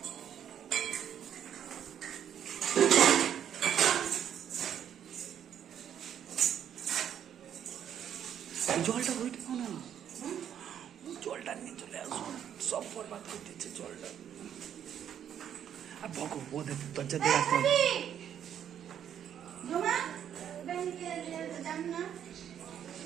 জলটা ওইটা না, জলটা নিয়ে চলে আসো, সব বরবাদ করে দিচ্ছে জলটা। আর বকো ওদের দরজা দিয়ে রাখতে হবে।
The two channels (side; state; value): left; quieter; 9.4 dB